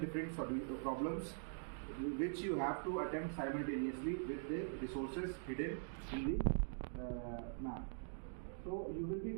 problems which you have to attempt simultaneously with the resources hidden in the map. So you will be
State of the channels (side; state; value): left; silent; digital silence